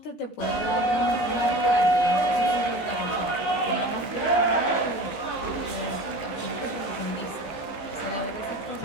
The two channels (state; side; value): late; right; 15 ms